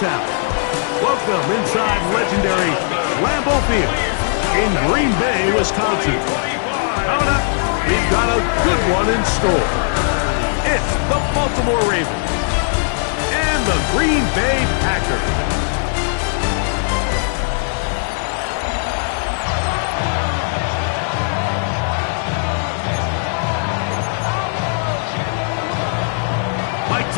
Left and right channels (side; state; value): right; silent; 67 dB below the other